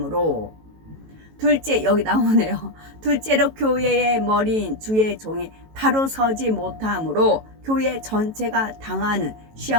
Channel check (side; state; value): left; late; 18 ms